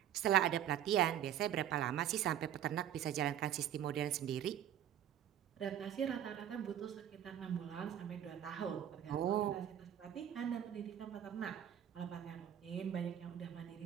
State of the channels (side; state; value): left; quieter; 10.5 dB